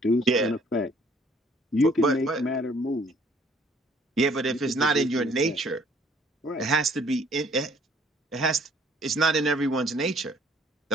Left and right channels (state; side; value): normal; both; correlation 0.60